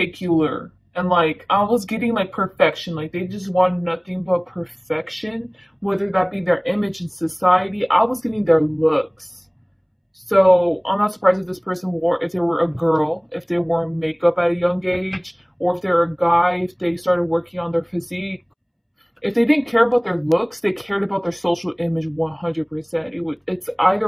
and like I was getting like perfection. Like, they just wanted nothing but perfection, whether that be their image in society. I was getting their looks. So I'm not surprised if this person if they were a girl, if they wore makeup at a young age, or if they're a guy, if they started working on their physique. If they didn't care about their looks, they cared about their social image 100%. It's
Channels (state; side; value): identical; both; correlation 1.00